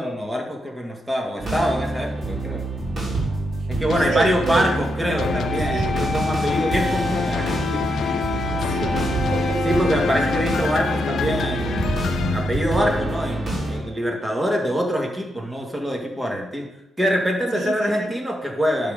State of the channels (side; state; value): both; normal; correlation 0.82